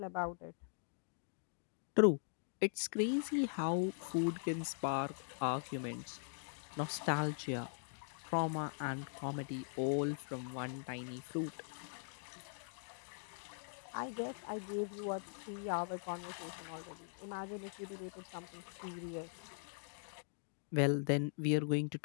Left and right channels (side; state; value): right; silent; digital silence